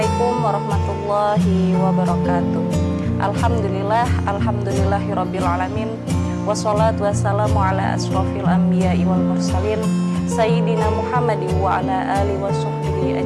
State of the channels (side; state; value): both; identical; correlation 1.00